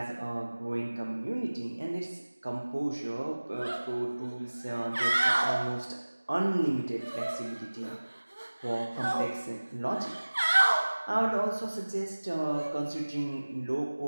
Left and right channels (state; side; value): inverted; both; correlation -1.00